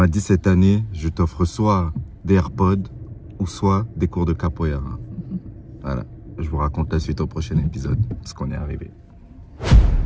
dit, cette année, je t'offre soit des AirPods ou soit des cours de capoeira. Voilà, je vous raconte la suite au prochain épisode, parce qu'on est arrivé.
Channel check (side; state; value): both; identical; correlation 1.00